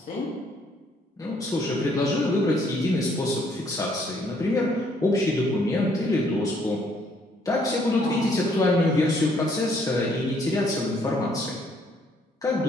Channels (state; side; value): normal; both; correlation 0.66